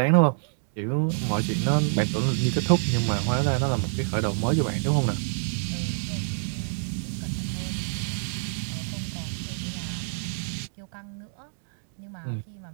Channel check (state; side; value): silent; left; digital silence